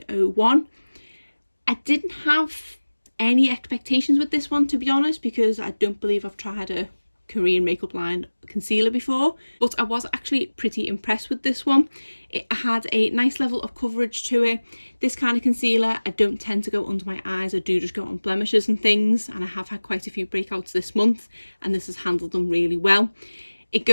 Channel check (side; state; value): both; inverted; correlation -1.00